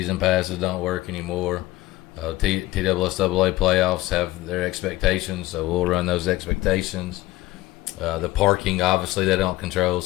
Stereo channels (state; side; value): quieter; right; 17.6 dB